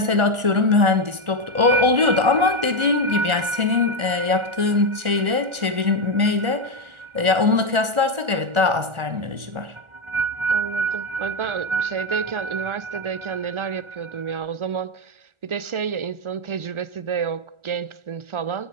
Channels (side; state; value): left; late; 1.4 ms